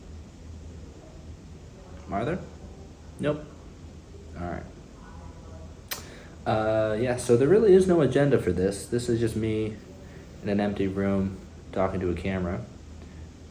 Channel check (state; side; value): identical; both; correlation 1.00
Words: Are there? Nope. Alright. Yeah, so there really is no agenda for this. This is just me in an empty room talking to a camera.